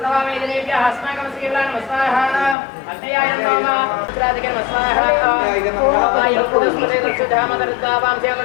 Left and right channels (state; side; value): drops out; right; at 2.6 s